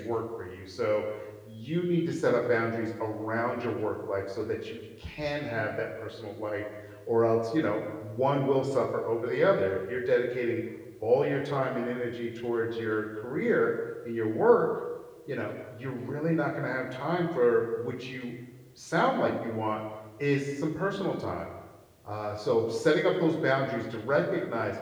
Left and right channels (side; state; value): both; identical; correlation 1.00